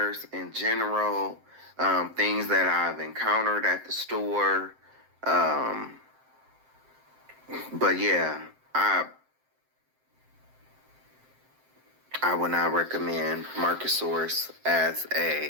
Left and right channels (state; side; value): late; left; 7.7 ms